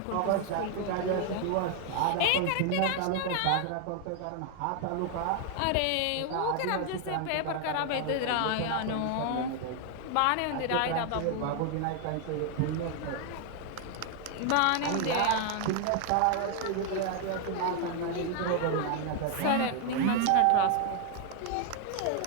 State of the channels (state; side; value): different; both; correlation 0.01